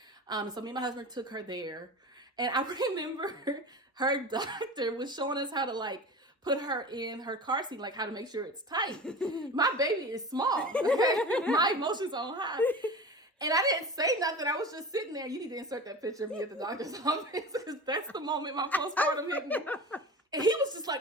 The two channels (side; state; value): both; normal; correlation 0.33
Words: So me and my husband took her there. And I remember her doctor was showing us how to like put her in her car seat, like how to make sure it's tight. My baby is small. My emotions on high. And I didn't say nothing. I was just sitting there. You need to insert that picture of me at the doctor's office because that's the moment my postpartum hit me. And he was just like